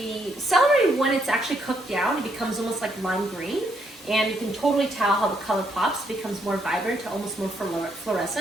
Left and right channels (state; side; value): normal; both; correlation 0.74